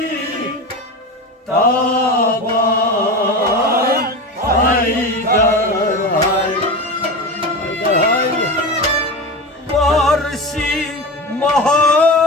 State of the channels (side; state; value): both; normal; correlation 0.26